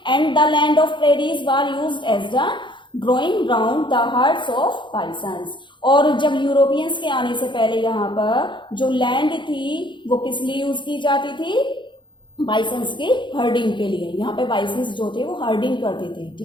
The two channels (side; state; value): right; late; 0.23 ms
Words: And the land of prairies were used as the growing ground the herds of bisons. और जब यूरोपियंस के आने से पहले यहाँ पर जो लैंड थी वो किस लिए यूज की जाती थी? बाइसन्स के हर्डिंग के लिए। यहाँ पे बाइसन्स जो थे वो हर्डिंग करते थे।